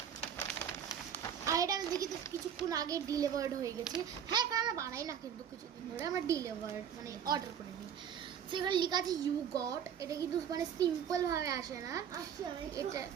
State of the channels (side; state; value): left; quieter; 8.4 dB